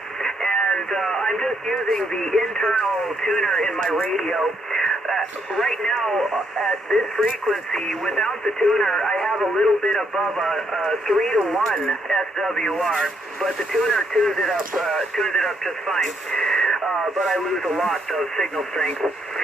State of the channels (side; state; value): both; normal; correlation 0.75